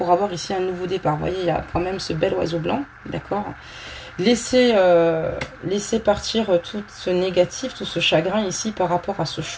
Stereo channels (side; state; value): both; identical; correlation 1.00